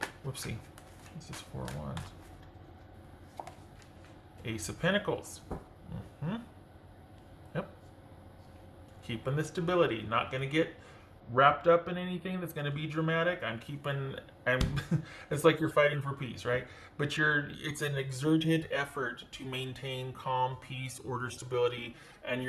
Whoopsie. What's this Four of Wands? Ace of Pentacles. Yep. Keeping the stability. Not going to get wrapped up in anything that's going to be dramatic. It's like you're fighting for peace, right? But it's an exerted effort to maintain calm, peace, order, stability, and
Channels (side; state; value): both; identical; correlation 1.00